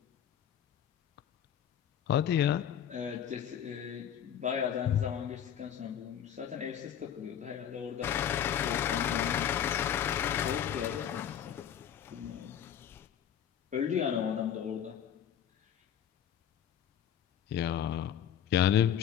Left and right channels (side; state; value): right; quieter; 9.5 dB